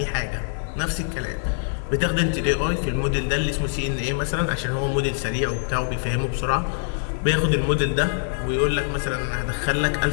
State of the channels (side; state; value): right; silent; digital silence